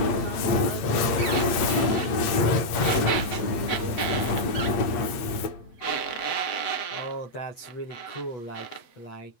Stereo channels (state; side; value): late; right; 8.6 ms